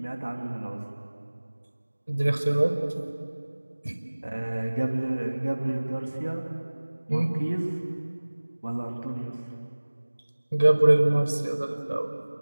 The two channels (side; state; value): both; inverted; correlation -1.00